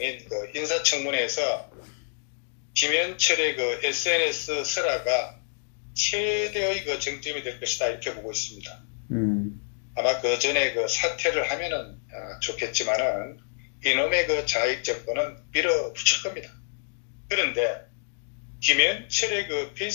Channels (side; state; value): right; silent; digital silence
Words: 그 인사청문회에서 김현철의 그 SNS 설화가 최대의 그 정점이 될 것이다 이렇게 보고 있습니다. 아마 그 전에 그 사퇴를 하면은 좋겠지만은 이놈의 그 자익 정권은 밀어붙일 겁니다. 그런데 김현철의 그